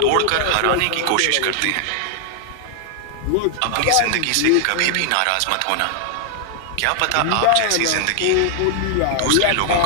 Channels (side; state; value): both; different; correlation 0.00